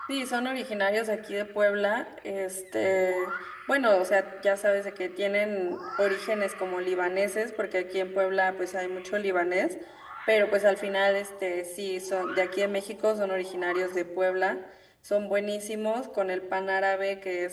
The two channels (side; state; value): both; identical; correlation 1.00